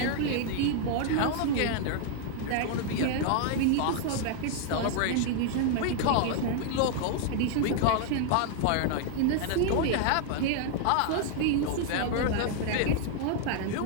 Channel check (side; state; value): both; different; correlation 0.00